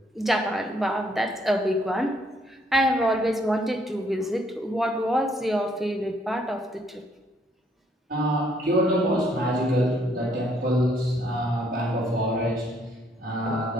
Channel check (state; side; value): normal; both; correlation 0.68